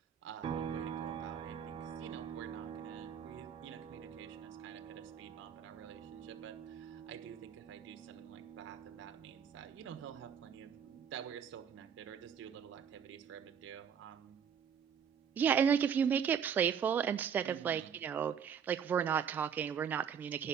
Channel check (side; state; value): left; quieter; 7.7 dB